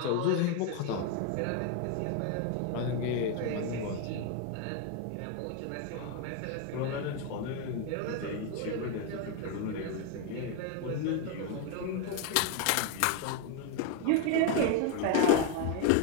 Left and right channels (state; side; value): different; both; correlation 0.01